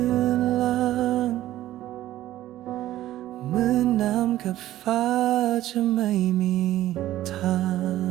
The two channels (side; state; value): left; quieter; 14.2 dB